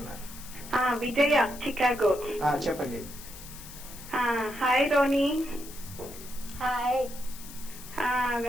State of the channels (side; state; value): left; noise; hiss, 15 dB below the sound